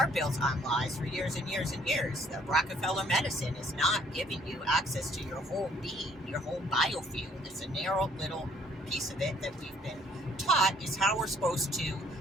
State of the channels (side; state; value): both; normal; correlation 0.62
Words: built on lies for years and years and years. The Rockefeller medicine is not giving you access to your whole being, your whole biofield. It's a narrow little piece of it that we've been taught is how we're supposed to